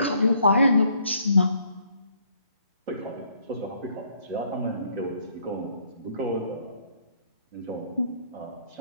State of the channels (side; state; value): both; inverted; correlation -0.67